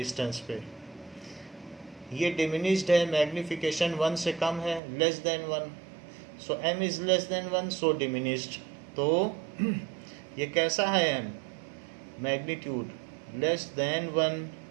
पे। ये डिमिनिश्ड है, मैग्निफिकेशन 1 से कम है, less than 1, so m is less than 1, so diminished. तो ये कैसा है m? Magnitude less than 1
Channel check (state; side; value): drops out; left; at 4.8 s